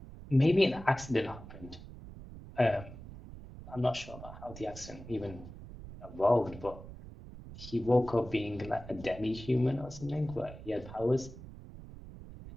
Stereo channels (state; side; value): noise; right; rumble, 14 dB below the sound